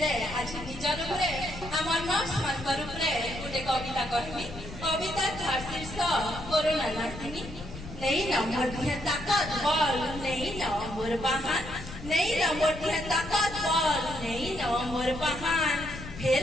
आज निजर उपरे आमर नर्स मानकर उपरे गोटे कविता कहमी कविता थार शीर्ष कोरोना नासिनी नहीं न मोर दिहे ताकत बल नहीं न मोर बहान नहीं न मोर दिहे ताकत बल नहीं न मोर बहान फिर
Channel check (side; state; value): left; noise; rumble, 12 dB below the sound